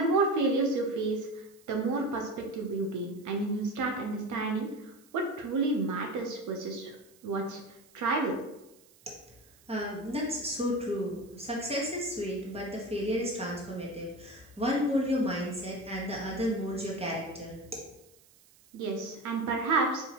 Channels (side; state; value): right; noise; hiss, 28 dB below the sound